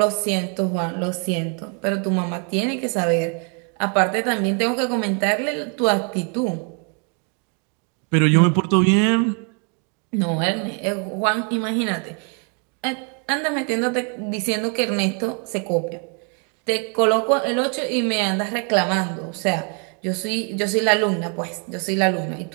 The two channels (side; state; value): left; quieter; 38.7 dB